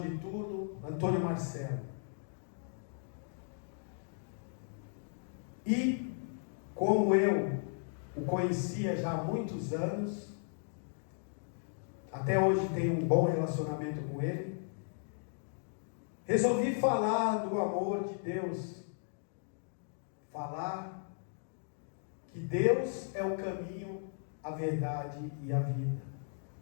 de turno, Antônio Marcelo. E, como eu o conhecia já há muitos anos, até hoje tenho um bom relacionamento com ele, resolvi falar do amor de Deus, falar que Deus é o caminho, a verdade e a vida.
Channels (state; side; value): silent; right; digital silence